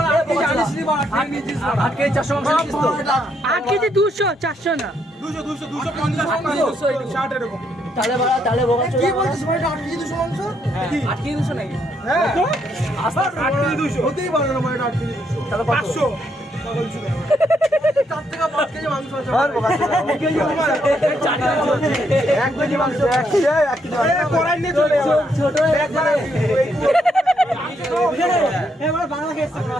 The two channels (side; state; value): both; normal; correlation 0.75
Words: আট কেজি 200 400 না 200 এরকম তাহলে কি বলছিস ভাই 8 কেজি 200 মাংস 8 কেজি 200 নাকি হ্যাঁ 8 কেজি 200 হতেই পারে না ভাই 8 কেজি 200 তাহলে 500 4 থেকে 5 কেজি মাংস আছে আর 1 কেজি মাংস 1 কেজি কড়াই নিয়ে চলে যাবে ছোট